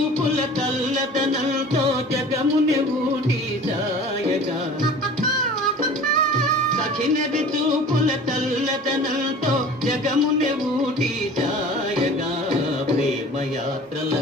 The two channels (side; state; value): both; normal; correlation 0.43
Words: కల్లతనంతో జగముని ఊటి సాయగా సఖినది చూపుల కల్లతనంతో జగముని ఊటి సాయగా